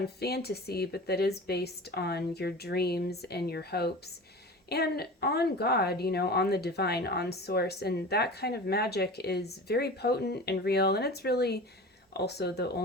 fantasy, but that is based on your dreams and your hopes and on God, on the divine, on source. And that kind of magic is very potent and real. And it's really also the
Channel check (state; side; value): normal; both; correlation 0.35